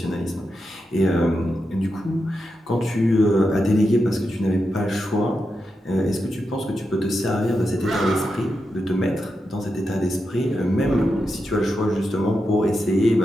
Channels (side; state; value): both; normal; correlation 0.87